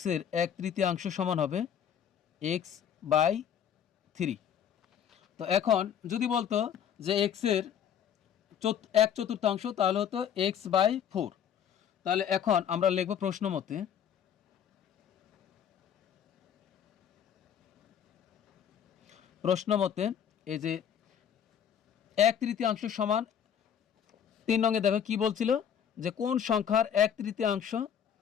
1/3 সমান হবে x/3। তো এখন যদি বলতো যে এক্সের 1/4 তাহলে হতো x/4। তাহলে এখন আমরা লিখব প্রশ্ন মতে এই যে 1/3 সমান 3 নঙে দেখো কি বলছিল যে কোন সংখ্যার 1/3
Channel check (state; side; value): quieter; right; 8.7 dB